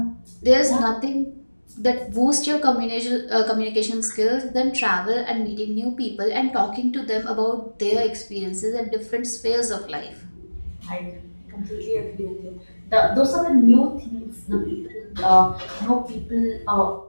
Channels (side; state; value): both; inverted; correlation -1.00